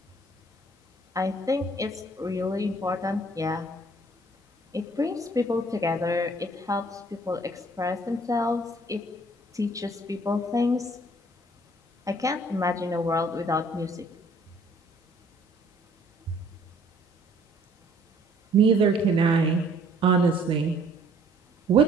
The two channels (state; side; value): normal; both; correlation 0.59